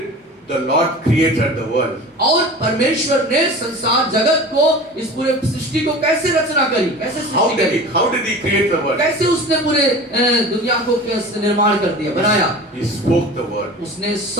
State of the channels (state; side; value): normal; both; correlation 0.36